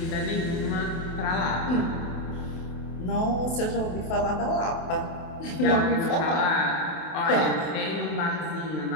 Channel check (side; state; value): right; late; 28 ms